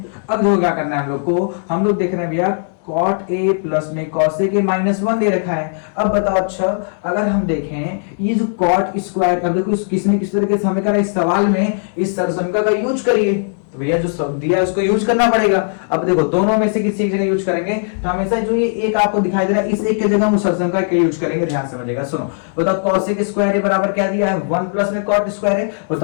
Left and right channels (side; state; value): right; silent; digital silence